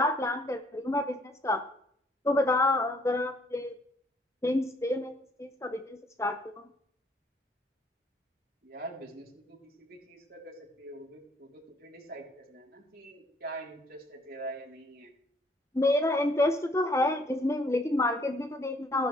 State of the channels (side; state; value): both; normal; correlation 0.64